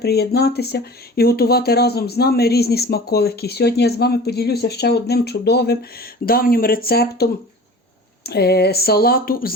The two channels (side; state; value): both; normal; correlation 0.40